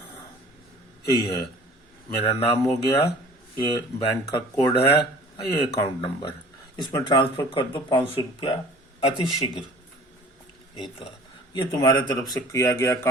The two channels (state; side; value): normal; both; correlation 0.48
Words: यही है। मेरा नाम हो गया, ये बैंक का कोड है, ये अकाउंट नंबर। इसमें ट्रांसफर कर दो 500 रुपया अति शीघ्र। ये तो है, ये तुम्हारे तरफ से किया गया